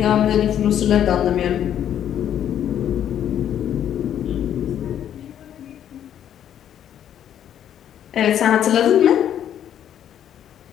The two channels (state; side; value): quieter; right; 10.2 dB